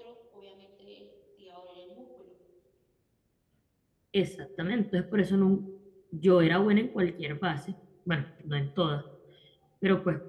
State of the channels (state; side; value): identical; both; correlation 1.00